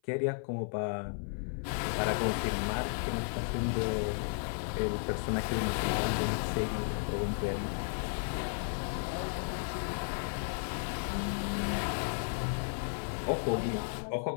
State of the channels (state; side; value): silent; right; 55 dB below the other